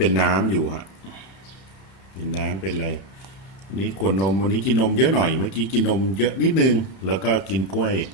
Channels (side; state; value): right; late; 30 ms